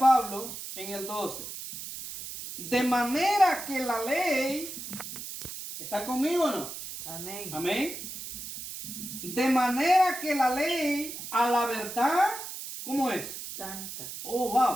en el 12, de manera que la ley, ¿está conmigo o no? Amén. Amén. De manera que la ley a la verdad, ¿cómo es? Santa. Oh,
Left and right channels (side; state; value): right; noise; hiss, 9 dB below the sound